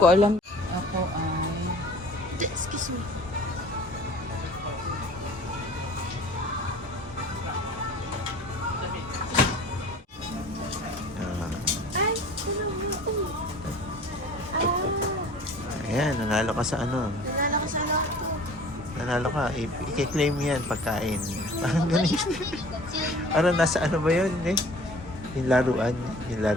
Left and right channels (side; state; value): both; normal; correlation 0.47